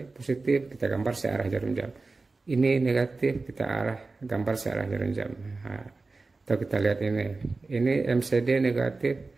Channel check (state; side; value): quieter; left; 3.7 dB